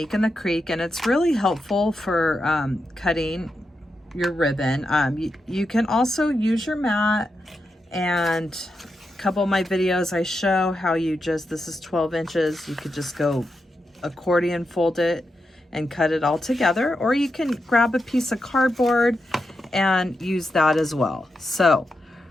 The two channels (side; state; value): both; normal; correlation 0.87